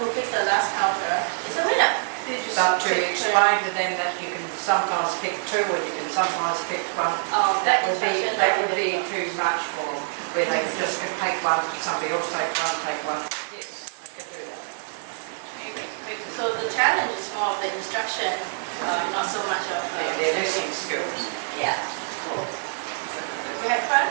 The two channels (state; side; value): silent; left; digital silence